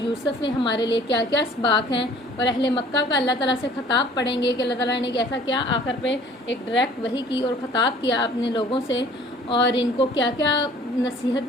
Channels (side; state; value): both; normal; correlation 0.52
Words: میں، ہمارے لیے کیا کیا اسباق ہیں، اور اہل مکہ کا اللہ تعالیٰ سے خطاب پڑھیں گے کہ اللہ تعالیٰ نے کیسا کیا آخر پہ ایک ڈائریکٹ وحی کی اور خطاب کیا اپنے لوگوں سے، اور ان کو کیا کیا